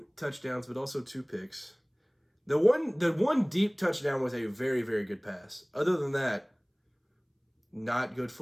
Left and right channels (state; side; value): identical; both; correlation 1.00